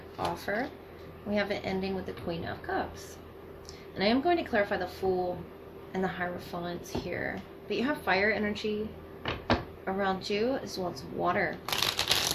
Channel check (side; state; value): both; identical; correlation 1.00